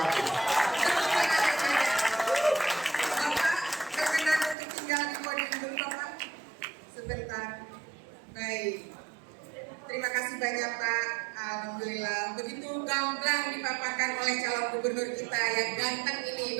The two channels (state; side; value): drops out; left; at 4.5 s